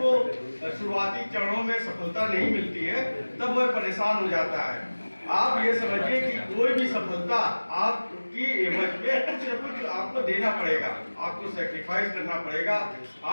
शुरुआती चरणों में सफलता नहीं मिलती है तब वह परेशान हो जाता है। आप ये समझिए कि कोई भी सफलता आपकी एवज में कुछ न कुछ आपको देना पड़ेगा, आपको सैक्रिफाइस करना पड़ेगा,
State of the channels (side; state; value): both; inverted; correlation -1.00